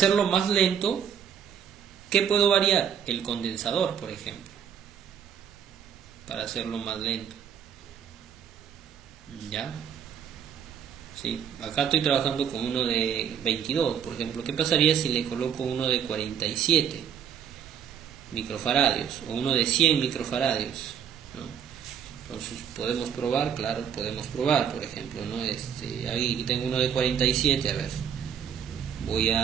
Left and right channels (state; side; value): quieter; left; 8.3 dB